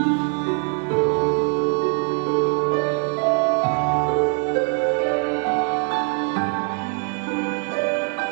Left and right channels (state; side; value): quieter; left; 35.1 dB